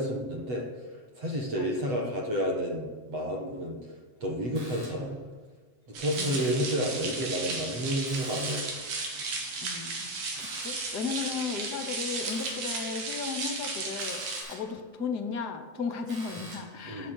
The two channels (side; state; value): left; late; 7.9 ms